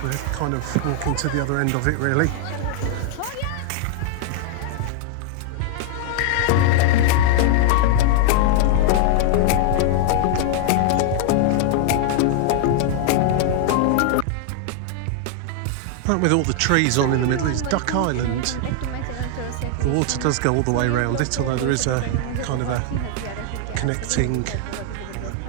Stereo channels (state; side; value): different; both; correlation 0.00